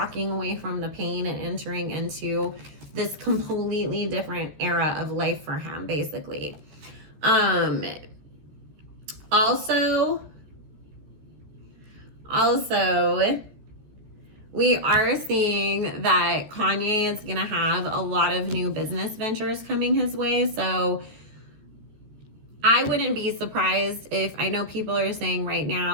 away from the pain and entering into this completely different era of life for him, basically. Also, we are seeing that Kanye is going to have a lot of new business ventures coming his way. So I wouldn't be surprised if, I know people are saying right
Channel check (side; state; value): left; late; 14 ms